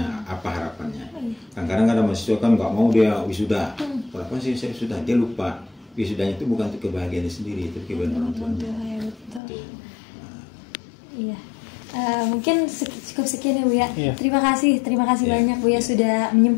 apa harapannya. Kadang-kadang ada mahasiswa kan nggak mau dia wisuda. Kenapa sih saya wisuda? Dia lupa wisudanya itu bukan untuk kebahagiaan sendiri, itu kebahagiaan orang tua. Iya. Mungkin cukup sekian ya Buya. Terima kasih banyak Buya sudah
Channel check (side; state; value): right; drops out; at 9.4 s